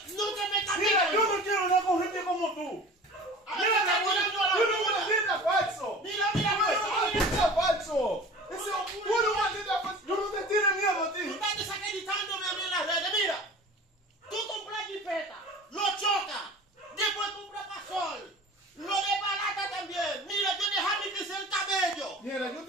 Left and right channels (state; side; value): normal; both; correlation 0.40